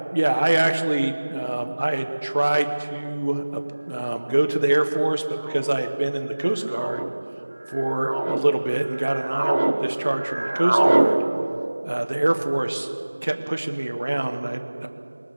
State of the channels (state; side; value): inverted; both; correlation -1.00